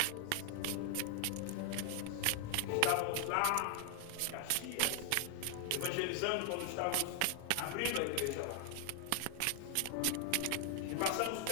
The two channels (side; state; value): both; different; correlation 0.00